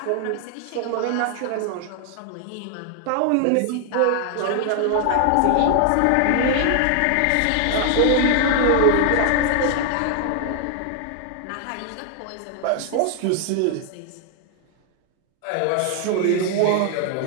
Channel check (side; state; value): both; different; correlation 0.00